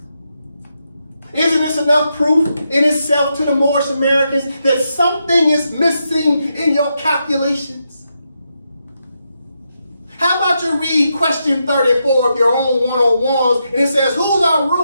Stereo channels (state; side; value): inverted; both; correlation -0.83